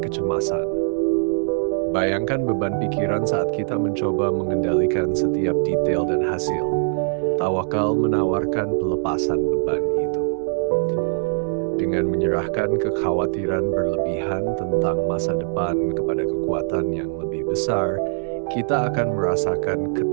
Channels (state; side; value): silent; left; 64 dB below the other